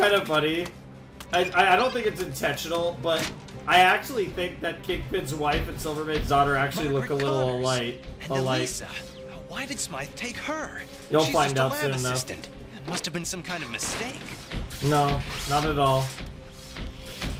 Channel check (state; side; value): identical; both; correlation 1.00